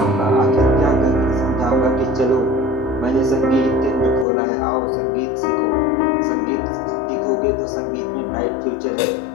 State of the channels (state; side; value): drops out; right; at 4.2 s